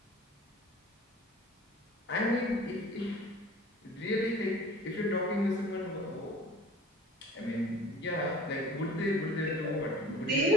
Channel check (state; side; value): normal; both; correlation 0.43